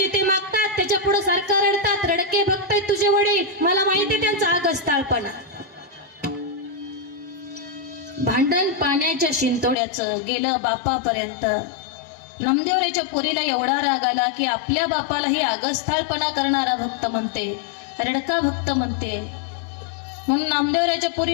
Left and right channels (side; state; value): right; drops out; at 9.8 s